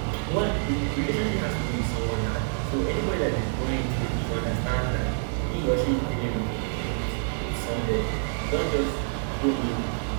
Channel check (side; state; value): left; silent; digital silence